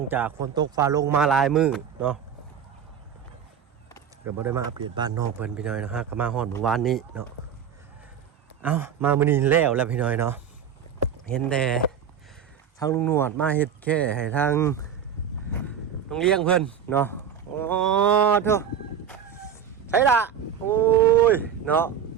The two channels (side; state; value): left; quieter; 8.1 dB